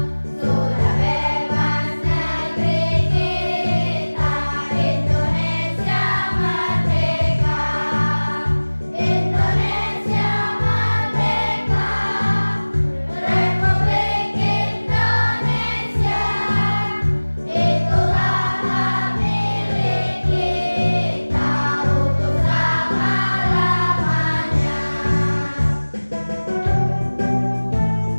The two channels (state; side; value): inverted; both; correlation -1.00